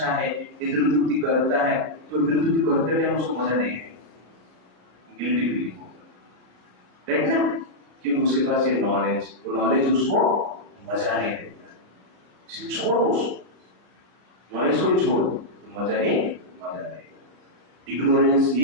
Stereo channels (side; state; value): left; late; 33 ms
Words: है, इंद्रिय तृप्ति करता है, तो इंद्रिय तृप्ति करते टाइम उसको मजा नहीं है। गिल्टी फीलिंग होगा, राइट ना? क्योंकि उसके पास ये नॉलेज, वो नॉलेज उसको मजा नहीं देता। छोड़ दो उसको, नॉलेज को ही छोड़ दो तो मजा ही मजा रहेगा। इग्नोरेंस